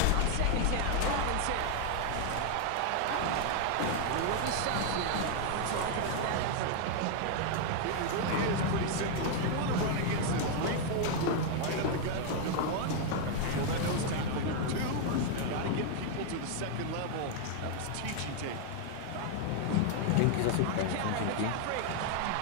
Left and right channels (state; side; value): different; both; correlation 0.00